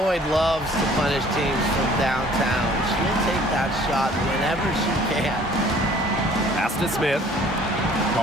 loves to punish teams from downtown. She'll take that shot whenever she can. Pass to Smith.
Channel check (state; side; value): normal; both; correlation 0.54